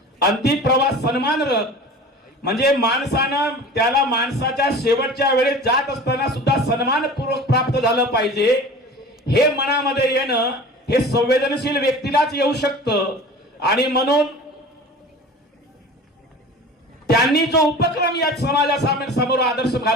अंतिम प्रवास सन्मान रथ म्हणजे माणसानं त्याला माणसाच्या शेवटच्या वेळेस जात असताना सुद्धा सन्मानपूर्वक प्राप्त झालं पाहिजे, हे मनामध्ये येणं हे संवेदनशील व्यक्तीलाच येऊ शकतं। आणि म्हणून त्यांनी जो उपक्रम या समाजासमोर आदर्श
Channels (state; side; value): normal; both; correlation 0.39